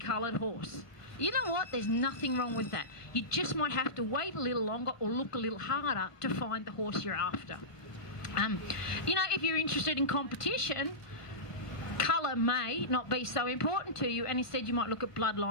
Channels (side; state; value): right; late; 1.3 ms